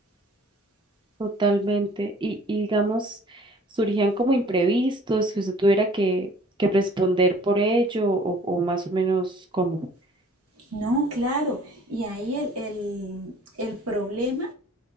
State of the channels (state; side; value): normal; both; correlation 0.53